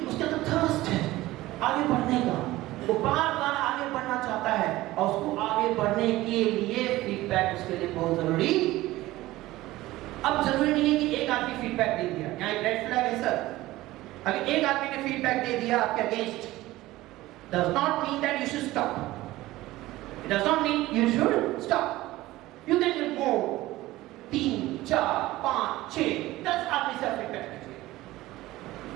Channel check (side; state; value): left; quieter; 17.4 dB